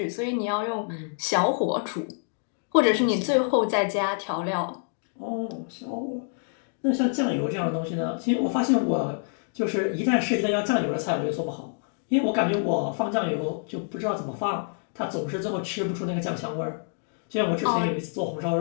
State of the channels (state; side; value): silent; right; digital silence